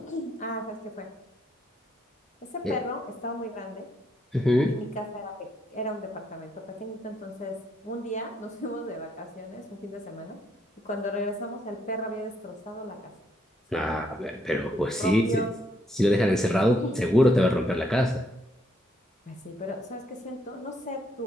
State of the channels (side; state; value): both; normal; correlation 0.73